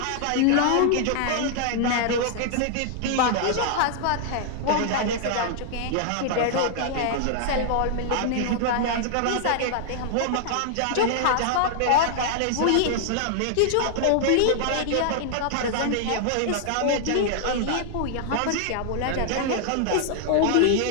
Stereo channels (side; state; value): both; different; correlation -0.01